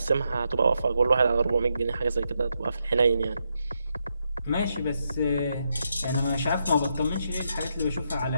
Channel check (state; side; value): inverted; both; correlation -0.82